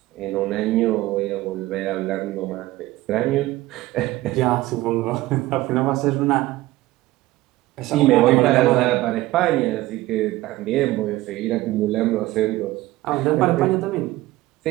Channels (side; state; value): left; quieter; 17.6 dB